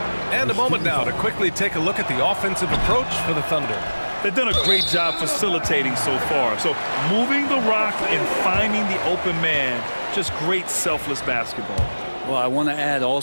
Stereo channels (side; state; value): both; inverted; correlation -1.00